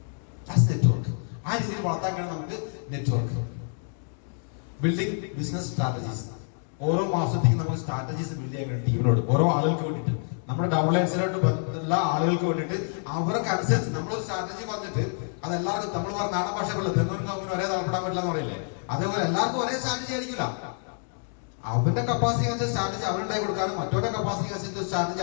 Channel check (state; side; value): silent; right; 60 dB below the other